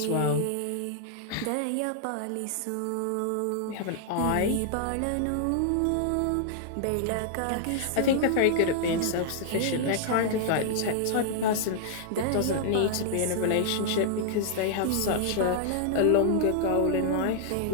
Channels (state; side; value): different; both; correlation -0.01